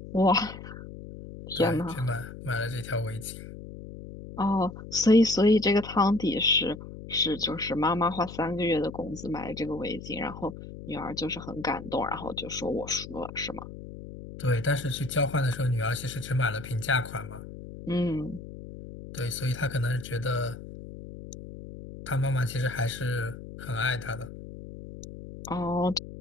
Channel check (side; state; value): left; noise; hum, 12 dB below the sound